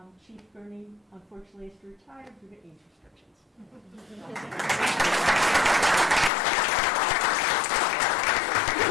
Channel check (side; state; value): right; drops out; at 6.3 s